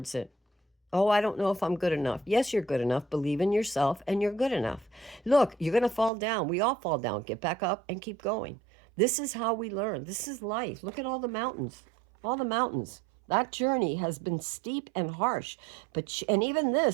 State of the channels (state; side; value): drops out; left; at 6.1 s